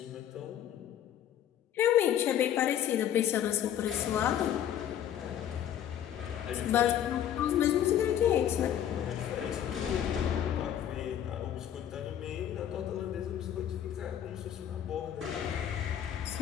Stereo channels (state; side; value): quieter; right; 10.4 dB